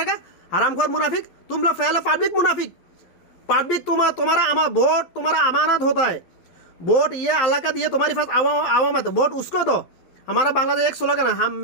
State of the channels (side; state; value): right; late; 12 ms